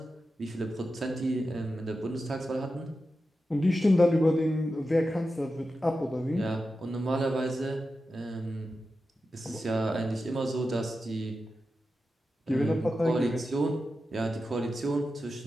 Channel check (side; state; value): both; normal; correlation 0.91